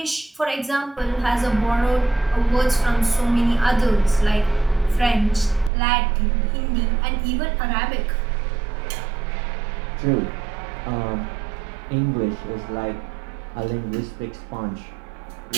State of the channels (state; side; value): drops out; left; at 5.7 s